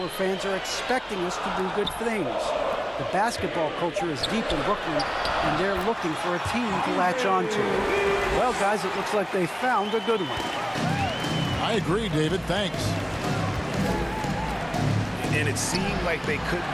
fans are expecting us to do good things. The basketball culture is deep in Brooklyn, and they're looking for a team to latch on to. Well, guys, it looks like they found a good one. I agree, David. Thanks. And it seemed like they couldn't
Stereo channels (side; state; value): both; identical; correlation 1.00